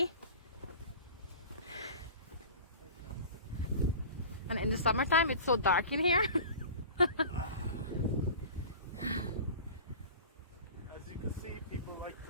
And in the summertime, it's so dark in here. As you can see, people like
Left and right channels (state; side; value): inverted; both; correlation -0.38